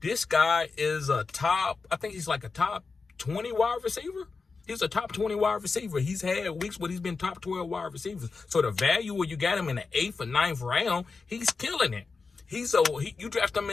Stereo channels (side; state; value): right; quieter; 4.5 dB